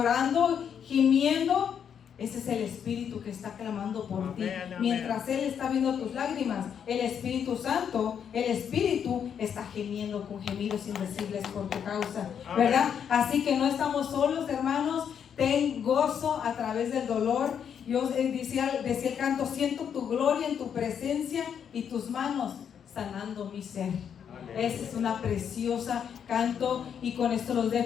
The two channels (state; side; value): quieter; right; 8.0 dB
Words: gimiendo. Ese es el Espíritu que está clamando por ti. Amén, amén. Mientras Él está viendo tus lágrimas, el Espíritu Santo, el Espíritu está gemiendo con gemidos indecibles por tu causa, Amén. ¿verdad? Así que no estamos solos, hermanos. Ten gozo a través del dolor. Yo decía el canto: siento tu gloria en tu presencia y tus manos sanando mi ser. Esa es una preciosa canto, y con esto los